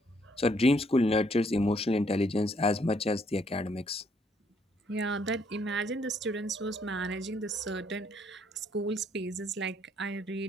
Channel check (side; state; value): both; normal; correlation 0.68